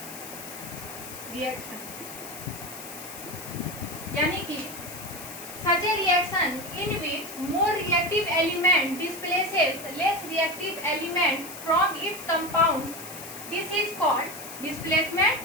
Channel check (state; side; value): noise; left; hiss, 12 dB below the sound